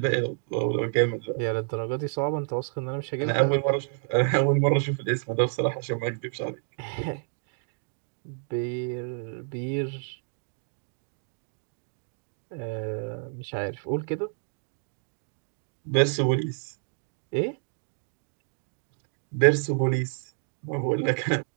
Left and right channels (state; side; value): silent; left; 58 dB below the other